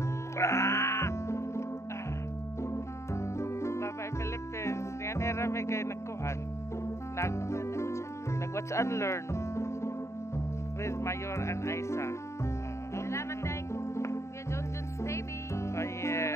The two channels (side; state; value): right; late; 0.14 ms